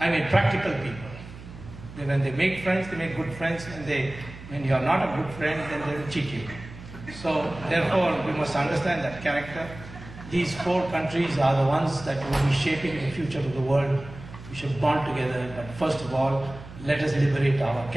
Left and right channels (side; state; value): right; noise; hum, 15 dB below the sound